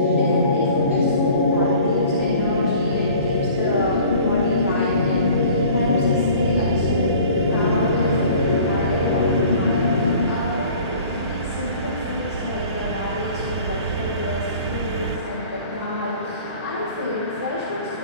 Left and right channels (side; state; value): both; inverted; correlation -0.47